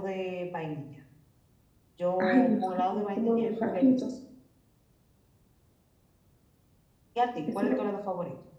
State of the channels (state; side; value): identical; both; correlation 1.00